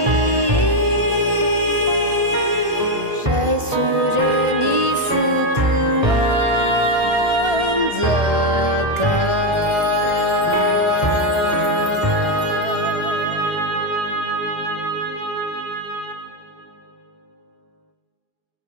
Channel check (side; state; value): left; late; 1.4 ms